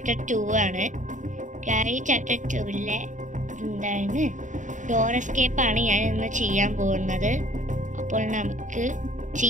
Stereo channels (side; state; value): left; late; 0.36 ms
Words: 2 ആണ്. ഗ്രാനി ചാപ്റ്റർ 2-ലെ എന്താണ് ഡോർ എസ്കേപ്പാണ് ഞാൻ ഇന്ന് ചെയ്യാൻ പോകുന്നത്. അപ്പോൾ നമുക്ക്